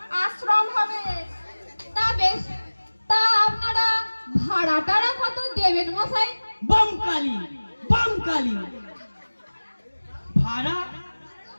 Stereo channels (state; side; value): inverted; both; correlation -1.00